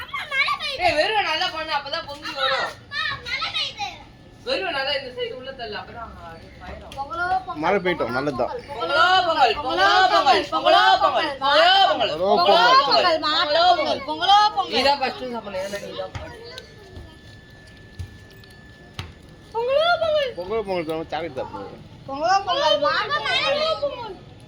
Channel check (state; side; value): identical; both; correlation 1.00